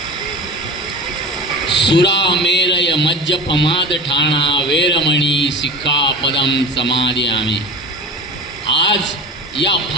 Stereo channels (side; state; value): both; normal; correlation 0.31